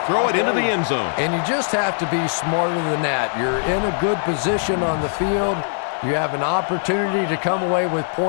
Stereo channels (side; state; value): right; silent; digital silence